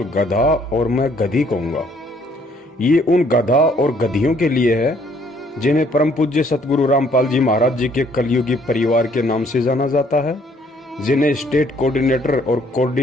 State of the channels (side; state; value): both; normal; correlation 0.64